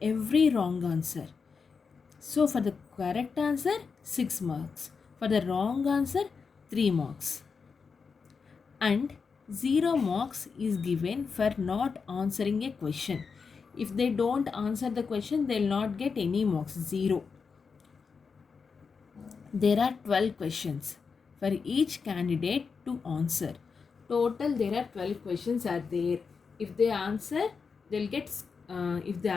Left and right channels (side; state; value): right; quieter; 5.4 dB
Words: every wrong answer. So for the correct answer 6 marks, For the wrong answer, 3 marks. And 0 marks is given for not answering a question. If they don't answer the question, they will not get any marks, 0. There are 12 questions for each candidate to answer. Total there are 12 questions are there. If they answer, they'll get, if they